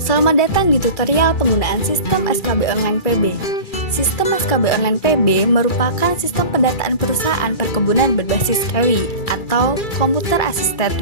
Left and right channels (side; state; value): right; late; 2.3 ms